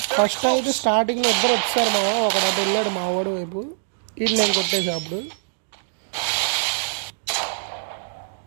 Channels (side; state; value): left; silent; digital silence